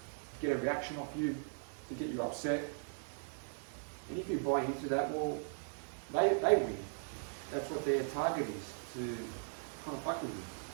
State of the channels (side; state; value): left; silent; 52 dB below the other